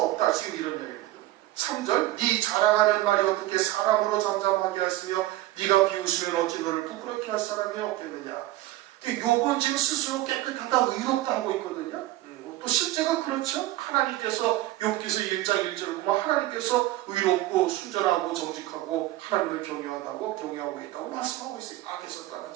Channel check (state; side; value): quieter; left; 16.3 dB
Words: 지금 이런 얘기입니다. 3절 네 자랑하는 말이 어떻게 사람으로 잠잠하게 하시며 네가 비웃으면 어찌 너를 부끄럽게 할 사람이 없겠느냐. 욥은 지금 스스로 깨끗하다 의롭다 하고 있거든요. 또 실제가 그렇죠. 하나님께서 욥기서 1장 1절을 보면 하나님께서 의롭고 순전하고 정직하고 하나님을 경외하고 있다고 말씀하고 있어요. 악에서 떠난